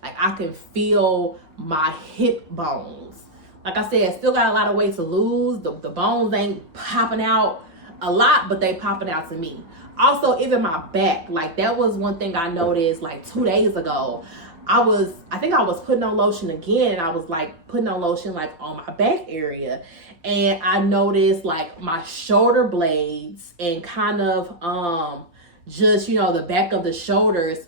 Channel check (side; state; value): left; late; 5.8 ms